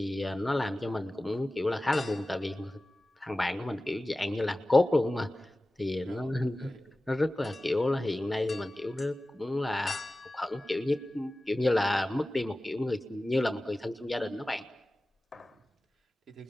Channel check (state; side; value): normal; both; correlation 0.96